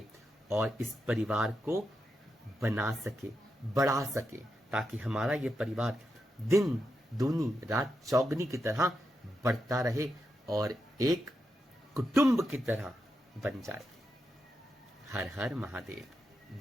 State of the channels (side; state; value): both; normal; correlation 0.86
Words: और इस परिवार को बना सके, बढ़ा सके, ताकि हमारा ये परिवार दिन दूनी रात चौगनी की तरह बढ़ता रहे और एक कुटुंब की तरह बन जाए। हर हर महादेव,